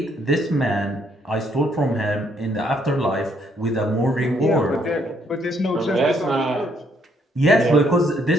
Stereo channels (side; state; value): both; normal; correlation 0.70